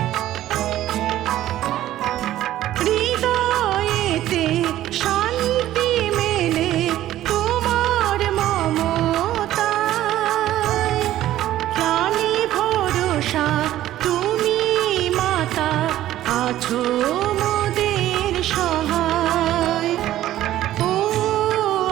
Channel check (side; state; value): left; quieter; 13.6 dB